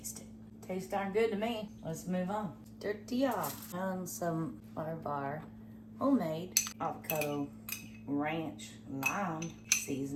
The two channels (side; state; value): both; identical; correlation 1.00